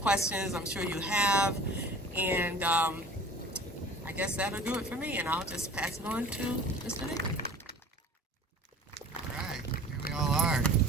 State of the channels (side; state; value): both; normal; correlation 0.43